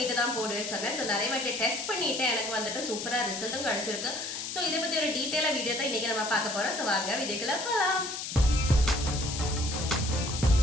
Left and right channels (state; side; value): noise; left; hiss, 6 dB below the sound